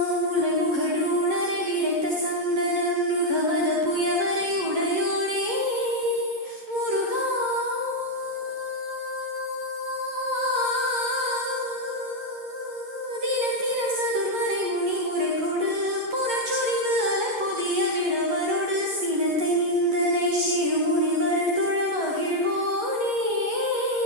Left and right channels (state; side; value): late; left; 11 ms